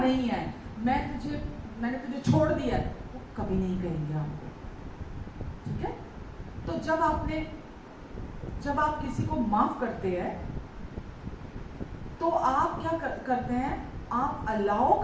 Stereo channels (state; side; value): identical; both; correlation 1.00